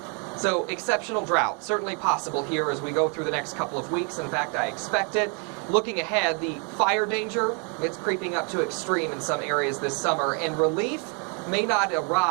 So exceptional drought, certainly possible here as we go through the next couple of weeks. In fact, I expect it. Looking ahead, the fire danger, it's creeping up to extreme in some areas this summer, and relief may not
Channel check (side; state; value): left; quieter; 36.9 dB